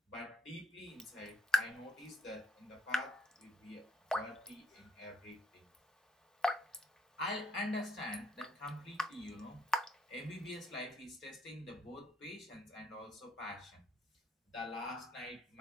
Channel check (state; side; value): normal; both; correlation 0.70